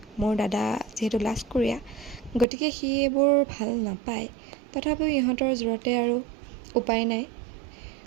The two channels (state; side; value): drops out; left; at 2.5 s